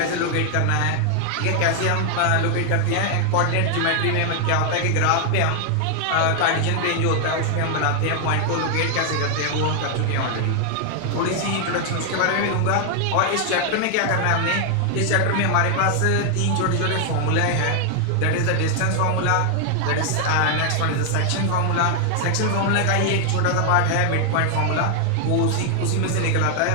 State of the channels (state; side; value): different; both; correlation 0.00